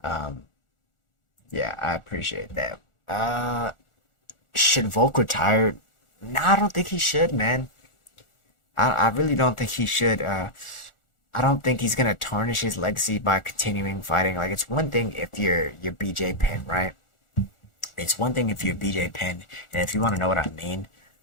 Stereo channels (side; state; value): right; late; 1.4 ms